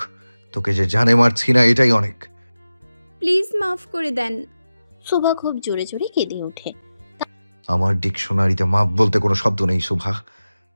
তোকে যে জানে মারছি না এটাই অনেক। প্লিজ মাফ করে দেন। সুভা খুব জোরে জোরে কেঁদে ওঠে। আমার ডিকশনারিতে মাপ বলতে কোনো শব্দ নেই সুভা।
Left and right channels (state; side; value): inverted; both; correlation -0.95